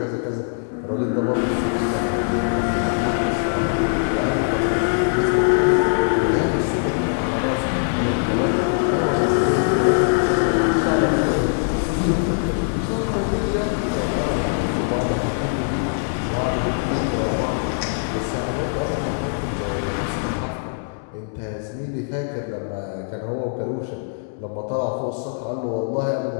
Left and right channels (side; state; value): right; silent; 64 dB below the other